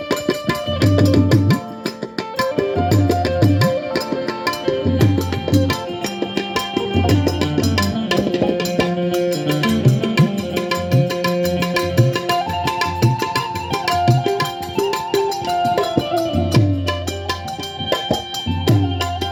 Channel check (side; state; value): both; identical; correlation 1.00